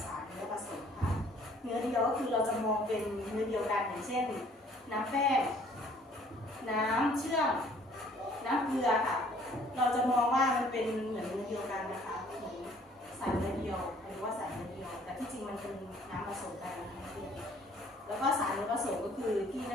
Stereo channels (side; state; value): both; normal; correlation 0.58